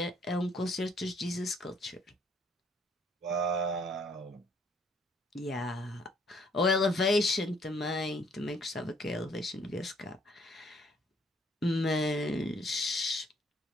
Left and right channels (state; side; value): normal; both; correlation 0.64